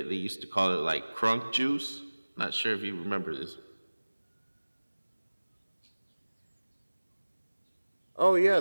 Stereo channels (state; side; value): inverted; both; correlation -1.00